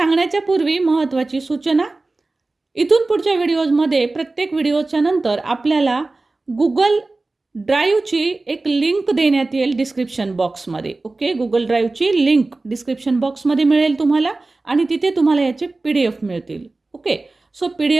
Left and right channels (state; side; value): quieter; left; 3.3 dB